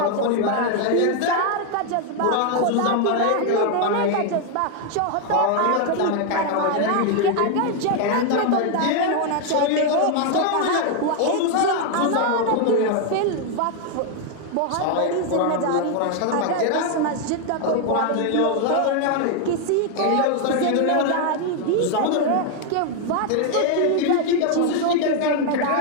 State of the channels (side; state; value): both; different; correlation 0.00